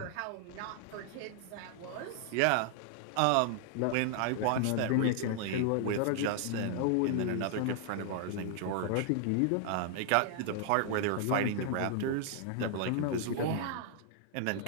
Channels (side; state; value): both; different; correlation 0.00